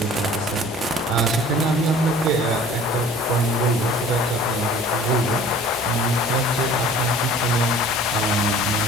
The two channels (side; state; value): both; normal; correlation 0.48